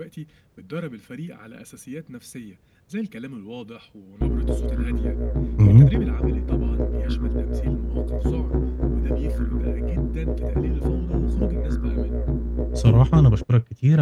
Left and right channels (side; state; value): both; identical; correlation 1.00